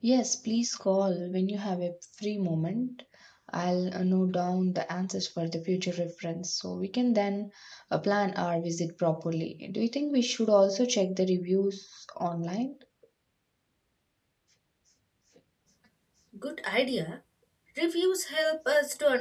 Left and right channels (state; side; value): identical; both; correlation 1.00